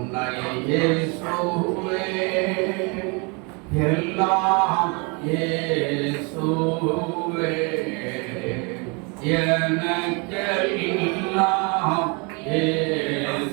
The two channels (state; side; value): quieter; left; 31.6 dB